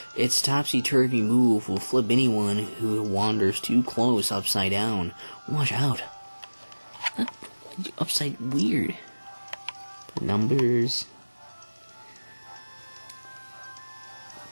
its topsy-turvy move will flip anyone who wanders too close upside down. Watch out. Upside weird. Numbers.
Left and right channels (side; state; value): both; inverted; correlation -1.00